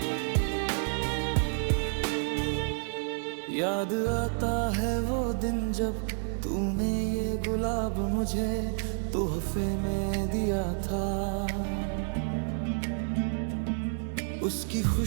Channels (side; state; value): left; silent; 58 dB below the other